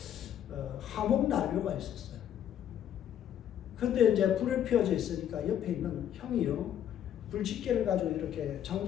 화목난로가 있었어요. 근데 이제 불을 피워져 있으니까 옆에 있는 형이요, 불집게를 가지고 이렇게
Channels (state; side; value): quieter; right; 10.2 dB